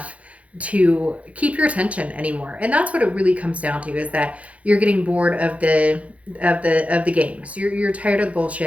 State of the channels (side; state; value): left; late; 0.065 ms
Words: to keep your attention anymore. And that's what it really comes down to, is that you're getting bored of the games. You're tired of the